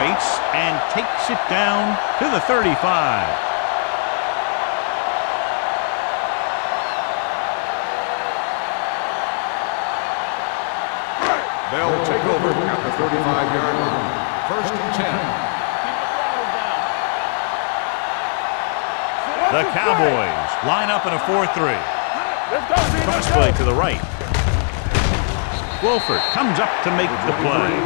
and takes it down to the 35. They'll take over at the 35-yard line. 1st and 10. Keep the throttle down. The Cowboys line up in a 4-3. Cross play to the right. Wolford comes up to make the play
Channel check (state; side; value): silent; right; 63 dB below the other